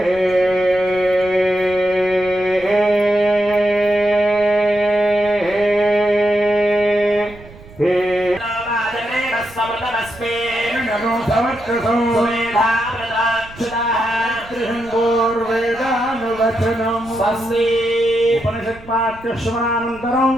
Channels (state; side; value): noise; right; rumble, 20 dB below the sound